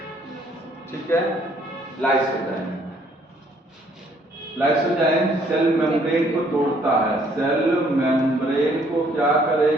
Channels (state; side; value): normal; both; correlation 0.64